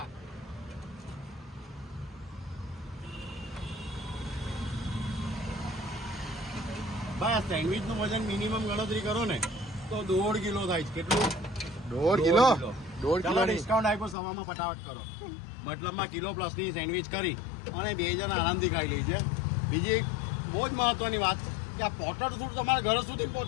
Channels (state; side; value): drops out; right; at 14.2 s